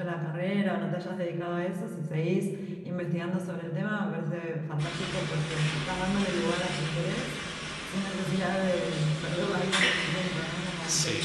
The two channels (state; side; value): identical; both; correlation 1.00